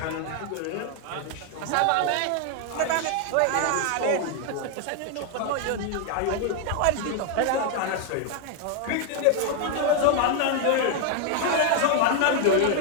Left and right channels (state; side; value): different; both; correlation 0.01